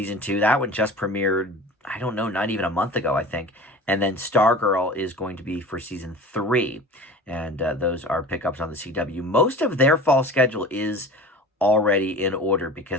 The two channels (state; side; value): normal; both; correlation 0.38